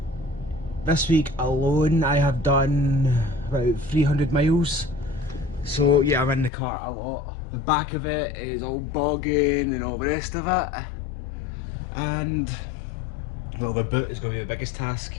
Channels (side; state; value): right; drops out; at 6.5 s